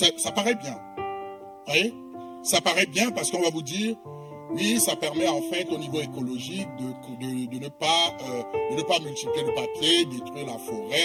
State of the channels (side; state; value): both; identical; correlation 1.00